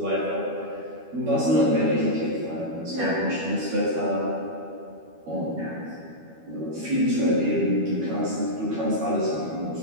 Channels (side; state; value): left; late; 12 ms